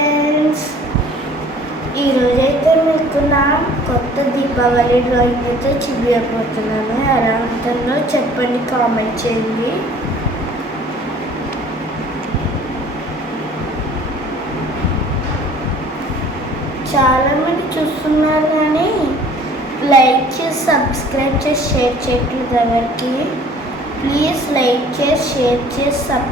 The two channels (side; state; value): both; normal; correlation 0.52